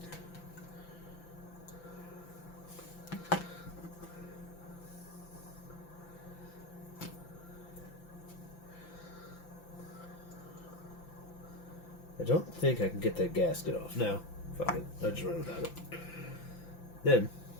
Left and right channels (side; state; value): right; late; 5.9 ms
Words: I don't think I can get that gasket off. No, fuck it. I'll just run without it. Then,